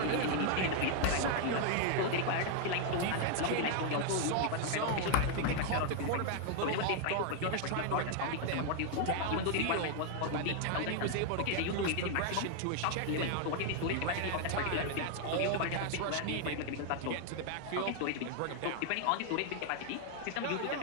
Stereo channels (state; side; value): different; both; correlation 0.00